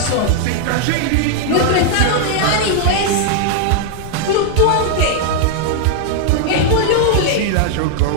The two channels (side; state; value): both; different; correlation -0.01